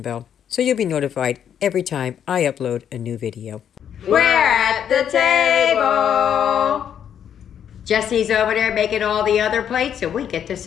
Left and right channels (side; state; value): right; quieter; 9.0 dB